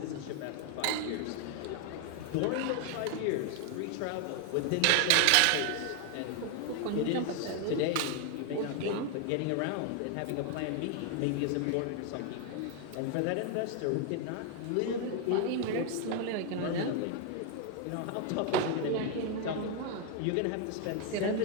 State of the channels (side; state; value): both; different; correlation 0.01